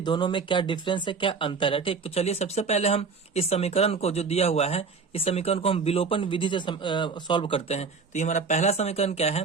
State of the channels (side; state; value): left; quieter; 5.0 dB